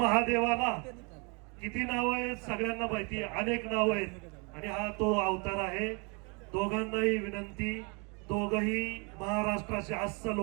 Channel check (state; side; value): quieter; left; 32.6 dB